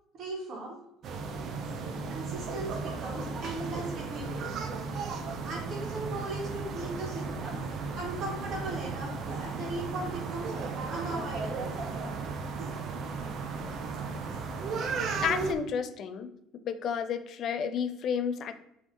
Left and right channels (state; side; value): normal; both; correlation 0.53